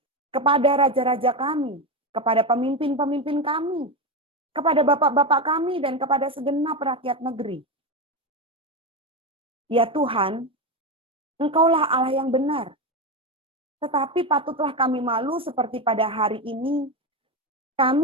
kepada raja-raja kami, kepada pemimpin-pemimpin kami, kepada bapak-bapak kami, dan kepada segenap rakyat negeri. Ya Tuhan, Engkaulah Allah yang benar. Tetapi patutlah kami malu seperti pada hari ini,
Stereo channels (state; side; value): normal; both; correlation 0.14